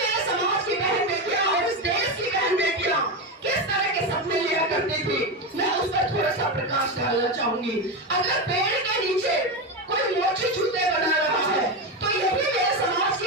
समाज की बहन बेटियां और इस देश की बहन बेटियां किस तरह के सपने लिया करती थी, मैं उस पर थोड़ा सा प्रकाश डालना चाहूंगी। अगर पेड़ के नीचे कोई मोची जूते बना रहा है, तो यही मेरे समाज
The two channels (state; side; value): normal; both; correlation 0.15